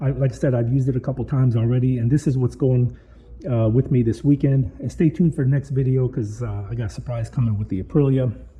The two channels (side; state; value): both; identical; correlation 1.00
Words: I said, I've used it a couple times already, and this is what's going with me this weekend. And stay tuned for the next video, because I got a surprise coming with the Aprilia.